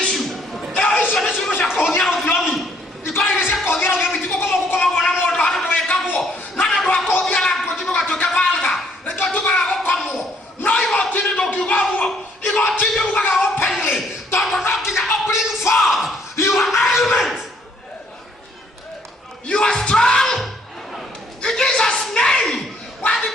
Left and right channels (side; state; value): both; normal; correlation 0.65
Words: issue icio ni ciugo cia kuhuthia uthiomi ikora ni cia kuhuthia uthiomi tigukomagwo na mundu handu wekagwo na ndu akuhuthia na nguo tugatuika valga nikio tugaga gukomwo no igotini ndukiugaguo igotini ugaga openly tondu no nginya bring forth your argument. You are strong in Jesus' name. Wadi